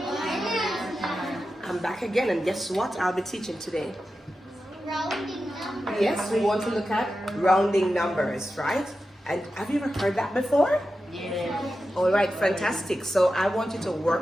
I'm back again, and guess what I'll be teaching today? Rounding numbers. Yes, we want to look at rounding numbers, right? And have you ever heard that before? Yes. All right, fantastic. So I want you to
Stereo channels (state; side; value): normal; both; correlation 0.91